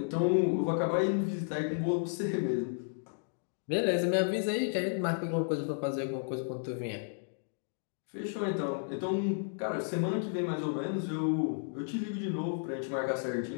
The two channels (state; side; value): silent; right; digital silence